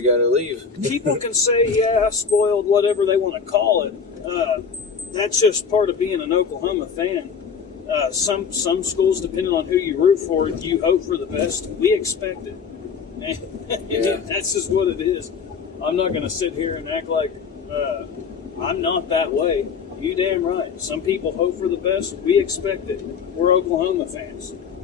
got to leave. People can say, spoiled, whatever they want to call it. That's just part of being an Oklahoma fan. Some schools, depending on who you root for, you hope for the best. We expect it. And that's just what it is. I'm not going to sit here and act like I'm not that way. You damn right. Some people hope for the best. We expect it. We're Oklahoma fans.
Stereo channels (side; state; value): right; quieter; 6.1 dB